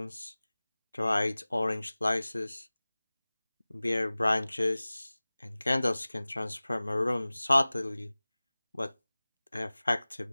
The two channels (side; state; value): both; inverted; correlation -0.99